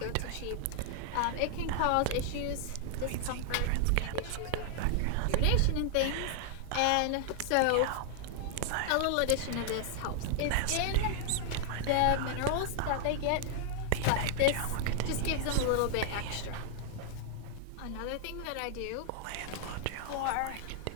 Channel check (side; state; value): both; different; correlation 0.00